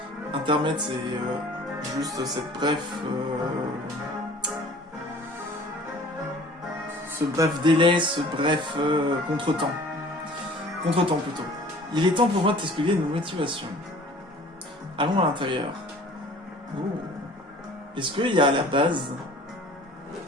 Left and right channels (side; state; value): both; normal; correlation 0.48